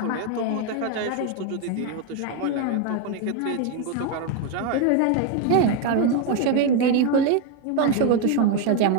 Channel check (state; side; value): different; both; correlation 0.02